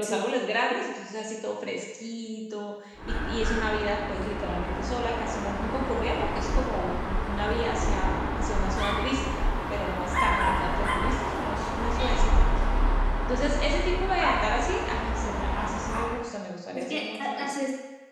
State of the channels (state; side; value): identical; both; correlation 1.00